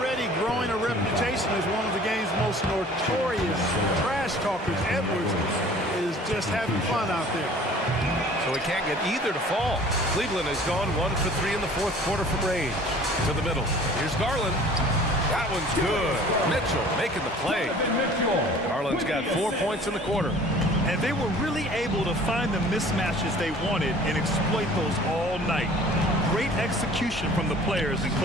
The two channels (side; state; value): both; normal; correlation 0.49